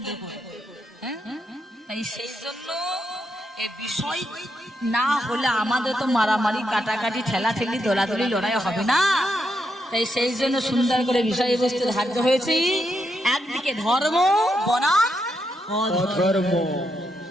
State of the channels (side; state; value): both; normal; correlation 0.81